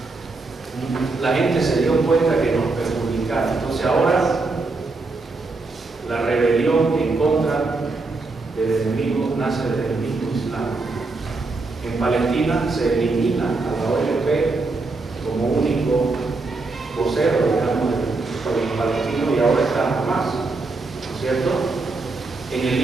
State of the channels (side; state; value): left; quieter; 3.6 dB